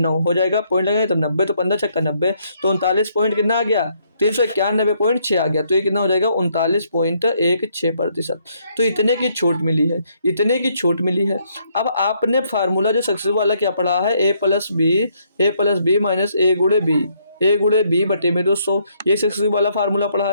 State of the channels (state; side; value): inverted; both; correlation -0.71